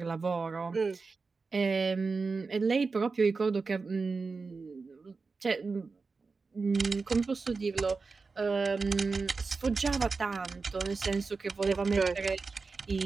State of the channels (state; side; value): quieter; left; 4.3 dB